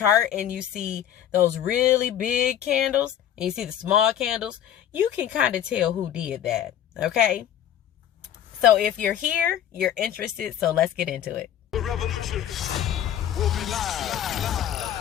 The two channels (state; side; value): quieter; right; 10.3 dB